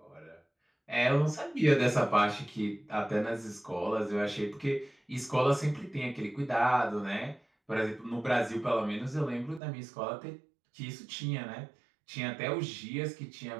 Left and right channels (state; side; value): drops out; left; at 9.6 s